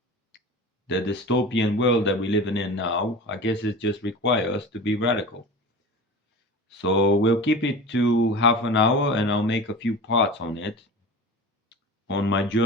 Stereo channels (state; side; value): normal; both; correlation 0.33